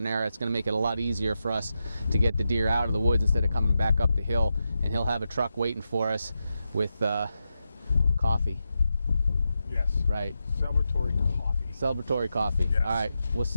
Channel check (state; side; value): inverted; both; correlation -0.88